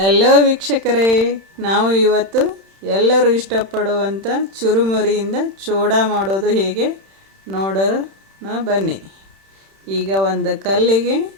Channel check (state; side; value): late; left; 31 ms